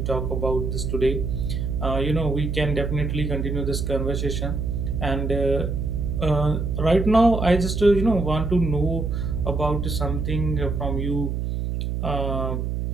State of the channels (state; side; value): noise; right; hum, 2 dB below the sound